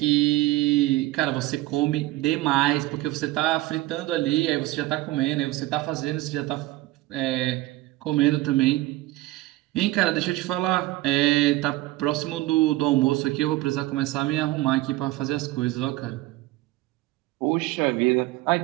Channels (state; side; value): quieter; left; 17.8 dB